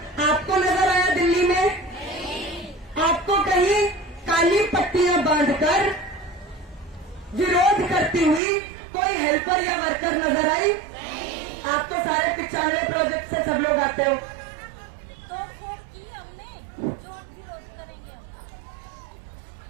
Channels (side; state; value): left; drops out; at 8.4 s